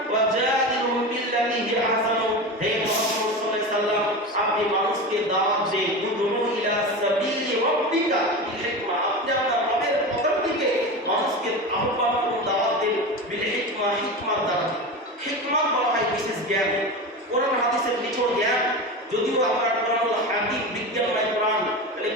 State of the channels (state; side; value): normal; both; correlation 0.25